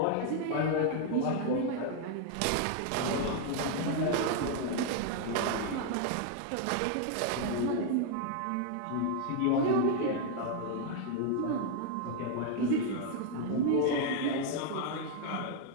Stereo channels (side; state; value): both; different; correlation 0.00